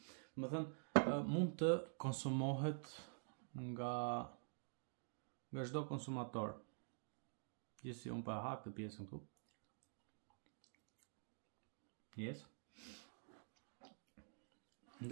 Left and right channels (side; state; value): left; silent; digital silence